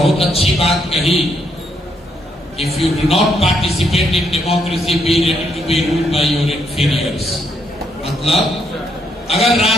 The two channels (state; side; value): normal; both; correlation 0.75